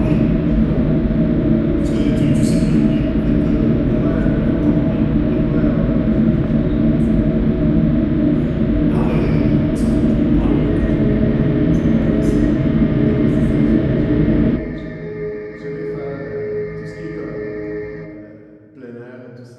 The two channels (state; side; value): identical; both; correlation 1.00